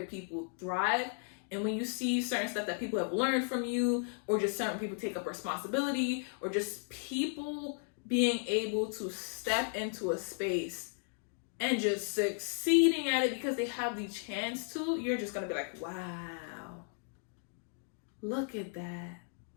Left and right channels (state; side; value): silent; right; 54 dB below the other